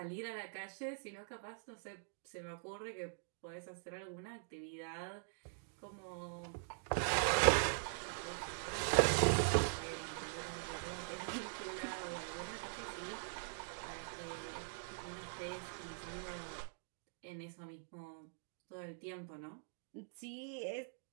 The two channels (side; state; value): left; silent; digital silence